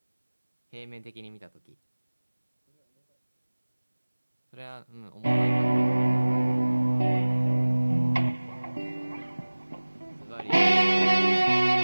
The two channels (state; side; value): inverted; both; correlation -1.00